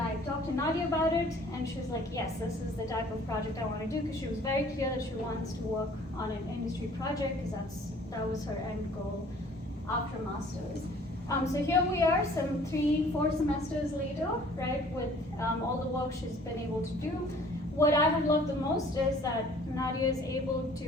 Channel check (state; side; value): normal; both; correlation 0.53